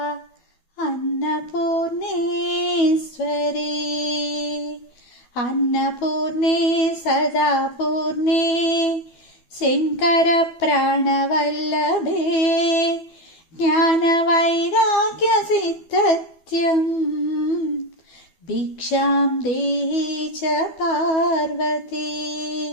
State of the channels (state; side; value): late; right; 12 ms